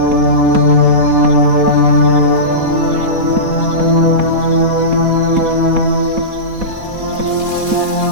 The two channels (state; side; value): late; left; 4.1 ms